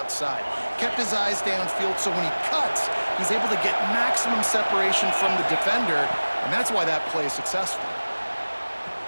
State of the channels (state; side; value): inverted; both; correlation -1.00